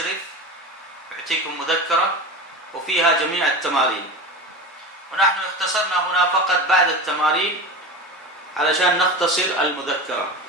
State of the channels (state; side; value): normal; both; correlation 0.28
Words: يعطيكم مذكرة وفيها جميع التمارين، ونحن اختصرنا هنا فقط بعد التمارين علشان نختصر المذكرة.